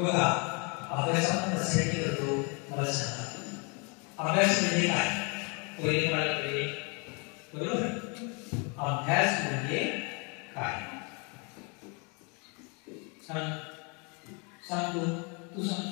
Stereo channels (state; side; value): quieter; right; 33.3 dB